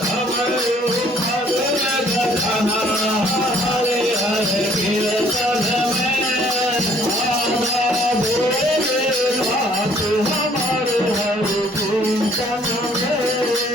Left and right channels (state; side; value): normal; both; correlation 0.60